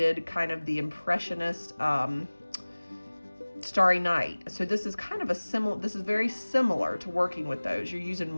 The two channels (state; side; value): inverted; both; correlation -1.00